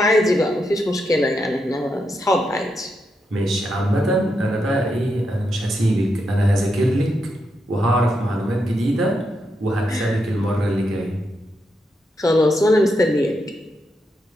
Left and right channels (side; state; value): both; normal; correlation 0.83